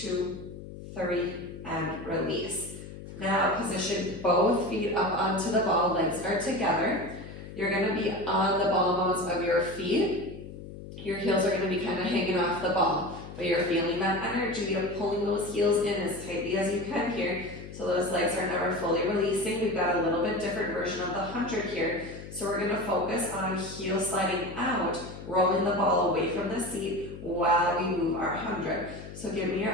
3, and release. Now position both feet up onto the ball, legs are together. You're going to be on the ball mounts of your feet. Your heels are going to be kind of hanging off the ball. But you're feeling that energy of pulling those heels in as tightly as you can here. So those legs are never fully releasing. We've got a little bit different version of the 100 here. So we're going to focus on heel sliding out, rolling the ball away from the seat while we move our 100. So give me your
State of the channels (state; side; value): noise; left; hum, 13 dB below the sound